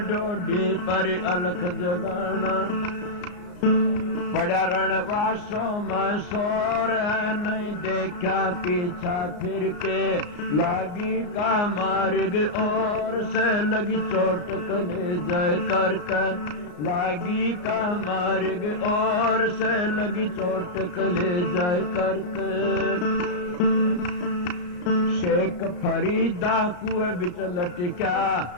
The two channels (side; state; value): right; late; 34 ms